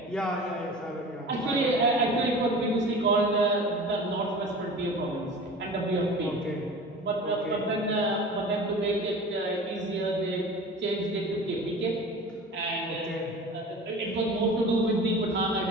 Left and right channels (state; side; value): normal; both; correlation 0.38